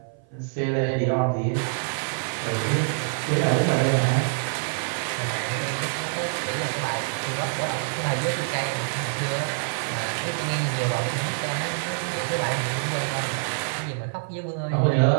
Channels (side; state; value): left; silent; 56 dB below the other